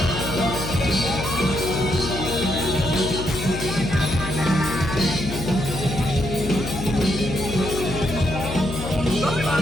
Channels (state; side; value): noise; left; hum, 6 dB below the sound